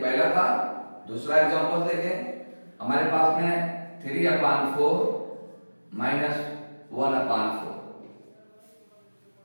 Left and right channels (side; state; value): both; inverted; correlation -1.00